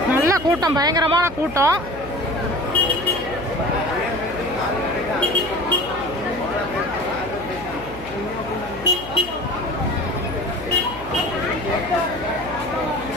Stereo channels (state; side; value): noise; left; hum, 15 dB below the sound